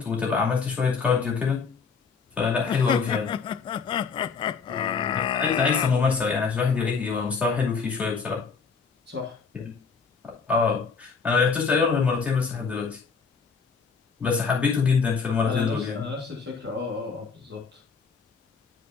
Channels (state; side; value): quieter; right; 5.3 dB